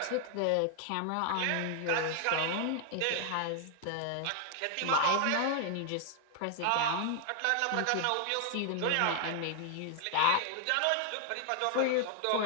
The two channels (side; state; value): both; different; correlation 0.00